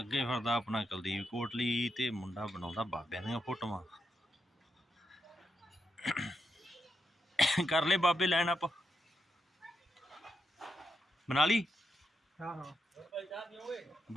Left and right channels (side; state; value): both; normal; correlation 0.84